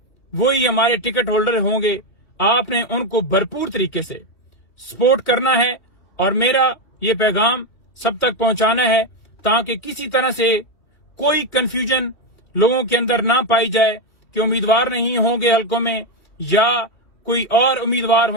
वो ही हमारे टिकट होल्डर होंगे। आपने उनको भरपूर तरीके से सपोर्ट करना है, और मेरा ये पैगाम सब तक पहुंचाना है, ताकि किसी तरह से कोई कंफ्यूजन लोगों के अंदर ना पाई जाए कि उम्मीदवार नहीं होंगे हलकों में, या कोई और उम्मीदवार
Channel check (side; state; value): right; late; 2.3 ms